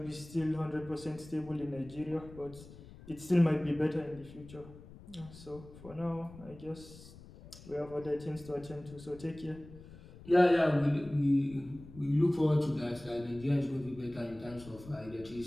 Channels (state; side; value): noise; left; rumble, 18 dB below the sound